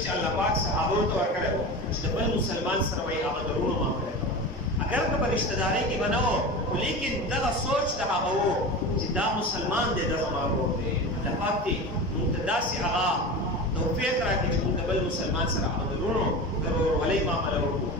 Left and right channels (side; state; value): both; normal; correlation 0.29